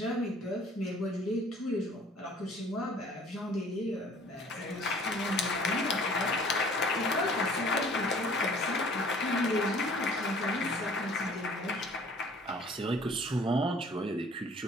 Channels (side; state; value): both; normal; correlation 0.52